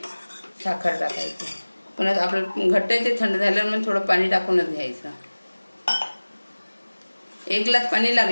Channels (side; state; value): both; inverted; correlation -1.00